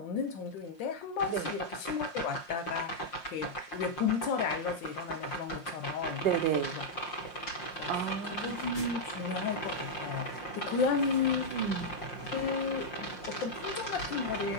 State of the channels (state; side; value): late; right; 5.7 ms